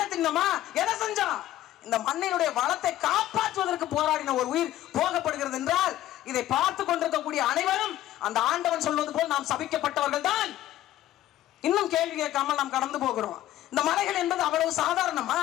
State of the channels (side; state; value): right; quieter; 13.8 dB